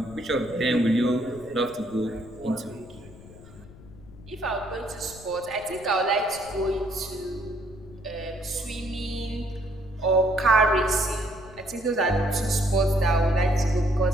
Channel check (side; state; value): left; noise; rumble, 20 dB below the sound